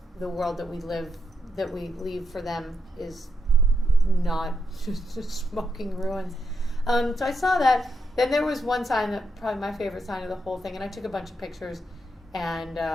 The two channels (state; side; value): normal; both; correlation 0.82